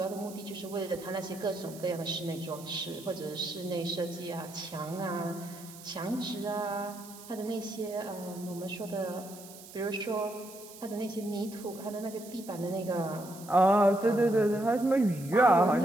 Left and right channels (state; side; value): noise; right; hiss, 17 dB below the sound